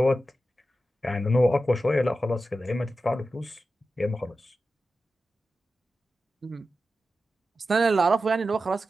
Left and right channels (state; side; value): normal; both; correlation 0.92